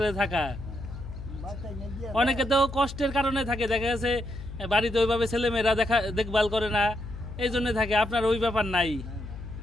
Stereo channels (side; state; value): left; noise; hum, 10 dB below the sound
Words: থাকা। অনেকে তো কষ্টের কারণে থাকে, দেখা গেছে বাড়িতে ওইভাবে ছেলেমেয়েরা দেখভাল করে না, এই জন্য থাকে। আপনার ওই ব্যাপার নাই?